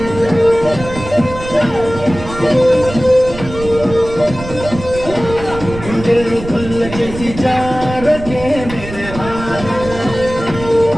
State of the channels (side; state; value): right; noise; rumble, 11 dB below the sound